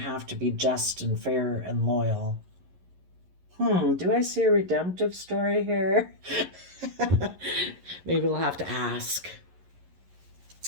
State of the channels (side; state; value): left; late; 11 ms